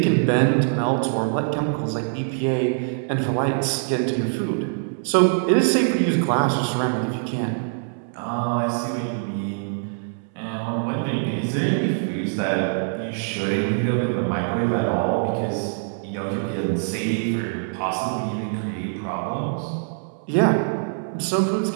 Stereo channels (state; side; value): silent; left; 63 dB below the other